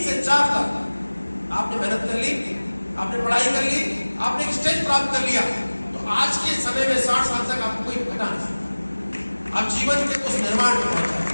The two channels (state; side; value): inverted; both; correlation -1.00